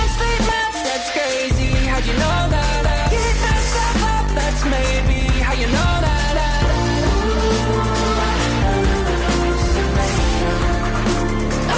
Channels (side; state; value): both; identical; correlation 1.00